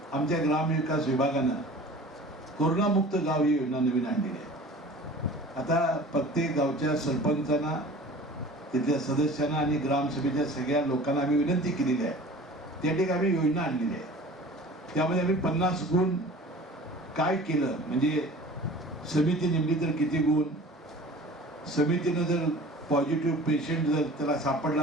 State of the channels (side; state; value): both; normal; correlation 0.43